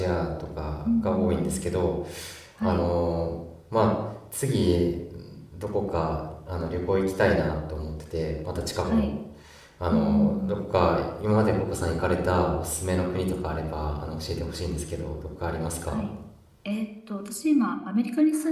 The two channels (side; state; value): both; identical; correlation 1.00